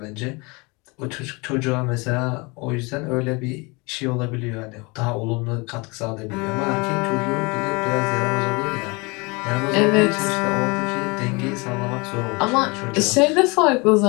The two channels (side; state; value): right; quieter; 27.6 dB